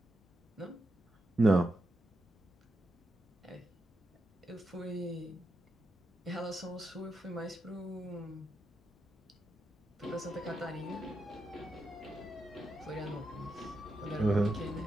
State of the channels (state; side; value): normal; both; correlation 0.86